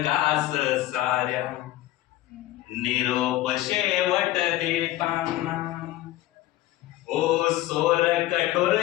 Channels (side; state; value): right; quieter; 15.5 dB